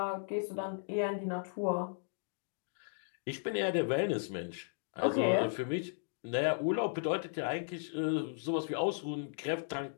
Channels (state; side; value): silent; right; digital silence